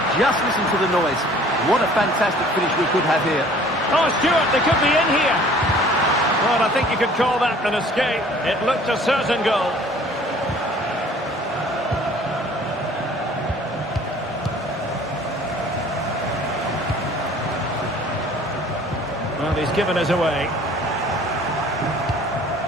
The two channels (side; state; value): both; normal; correlation 0.52